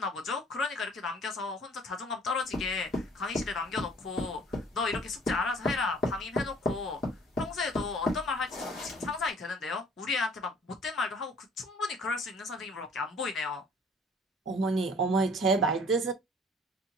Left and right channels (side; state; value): both; normal; correlation 0.55